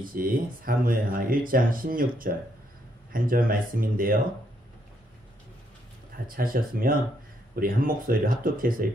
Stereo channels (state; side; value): normal; both; correlation 0.74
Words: 사무엘하 1장 16절 한 절 말씀인데요. 다 찾으셨으면 우리 한 목소리로 합독해서